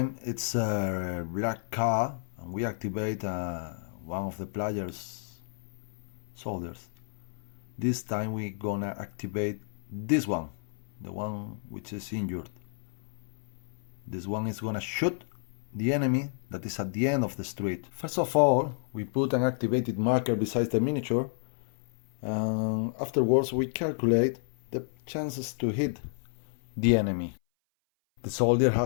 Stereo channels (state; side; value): silent; right; 56 dB below the other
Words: it's a black card and we activate one of the player's soldiers. This time we're gonna activate this one, the one which is injured. This one is gonna shoot the enemy that is at the end of the street. First of all, we put an activated marker beside the miniature, and afterwards we calculate the chances to hit the enemy. The soldier